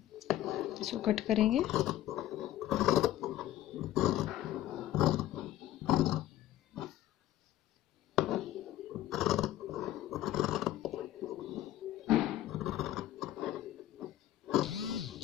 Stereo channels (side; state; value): right; quieter; 13.8 dB